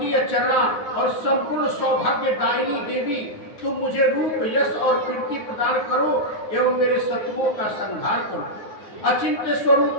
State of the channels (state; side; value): late; right; 9.4 ms